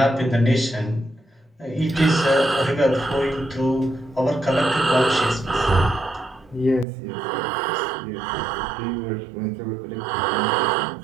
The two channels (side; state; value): left; drops out; at 6.9 s